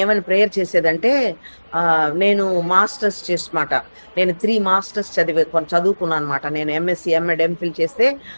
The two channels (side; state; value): both; inverted; correlation -1.00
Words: ఏమని ప్రేయర్ చేసేదంటే, నేను మాస్టర్స్ చేసమాట, నేను 3 masters చదువుకున్నాను అనమాట. నేను ఎంఎస్సి ఎంఎడ్ ఎంఫిల్ చేస్తే